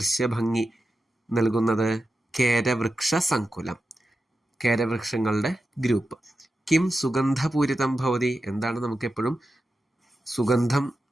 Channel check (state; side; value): normal; both; correlation 0.91